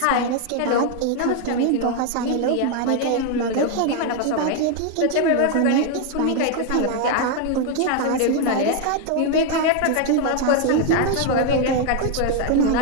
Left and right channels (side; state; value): both; different; correlation 0.01